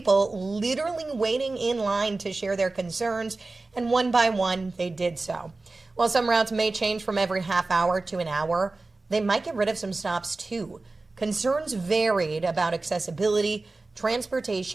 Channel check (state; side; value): quieter; left; 3.4 dB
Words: literally waiting in line to share their concerns, and one by one they did so. While some routes may change from every half hour to an hour, they might get rid of some stops too. Concerns varied about accessibility,